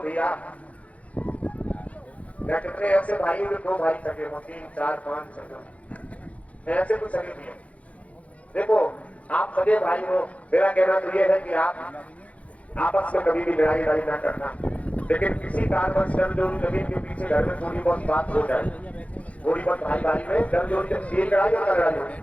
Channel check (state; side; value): late; right; 0.066 ms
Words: भैया, मैं कितने ऐसे भाई जो 2 भाई सके हो, 3, 4, 5 सके, ऐसे कुछ सके भी है। देखो आप सगे भाई हो, मेरा कहना तो ये है कि आप आपस में कभी भी लड़ाई ना करना, लेकिन किसी कारणवश जमजोरी जमीन के पीछे घर में थोड़ी बहुत बात हो जाए, थोड़ी बहुत भाई में जमजोरी लड़ाई और लड़ाई होती,